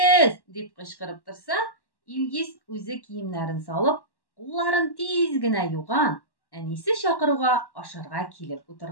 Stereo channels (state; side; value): late; right; 1.1 ms